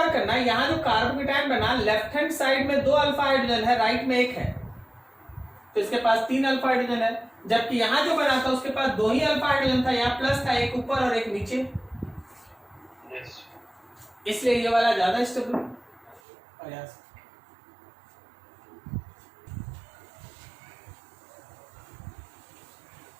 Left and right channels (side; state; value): left; drops out; at 16.2 s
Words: करना, यहां जो कार्बोकेटायन बना लेफ्ट हैंड साइड में 2 अल्फा हाइड्रोजन है, राइट में 1 है, तो इसके पास 3 अल्फा हाइड्रोजन है। जबकि यहां जो बना था उसके पास 2 ही अल्फा हाइड्रोजन था, यहाँ प्लस था, एक ऊपर और एक नीचे। यस इसलिए ये वाला ज्यादा स्टेबल प्रयास।